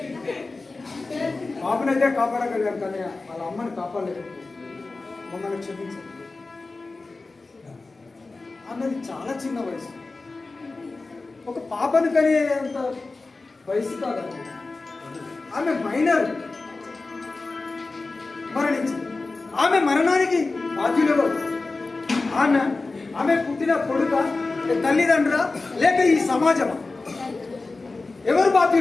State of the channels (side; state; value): right; quieter; 3.6 dB